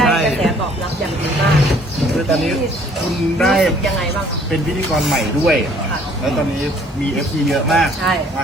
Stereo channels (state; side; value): normal; both; correlation 0.58